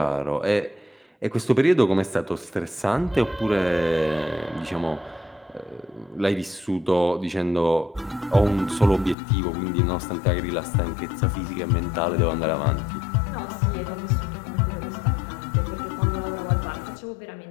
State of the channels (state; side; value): drops out; right; at 9.2 s